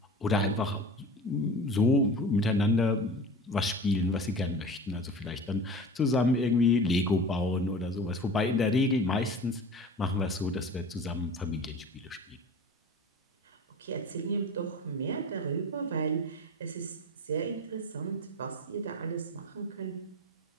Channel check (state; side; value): normal; both; correlation 0.36